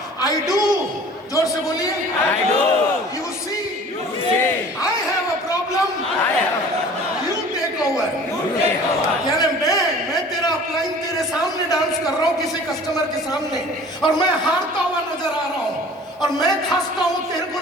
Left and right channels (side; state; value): both; normal; correlation 0.46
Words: आई डू। जोर से बोलिए, I do you see, I have a problem, you take over. यानी मैं तेरा अपलाइन तेरे सामने डांस कर रहा हूँ, किसी कस्टमर के सामने, और मैं हारता हुआ नजर आ रहा हूँ, और मैं खांसता हूँ, तेरे को